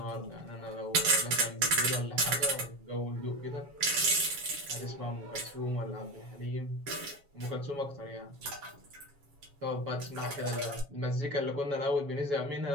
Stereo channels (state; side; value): late; left; 7.2 ms